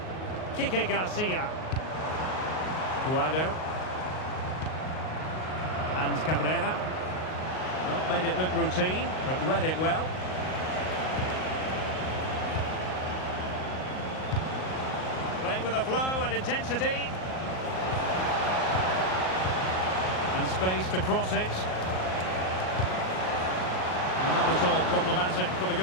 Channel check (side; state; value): right; late; 38 ms